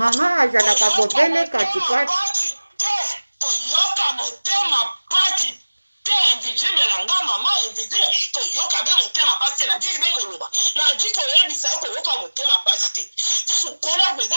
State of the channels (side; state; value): both; inverted; correlation -1.00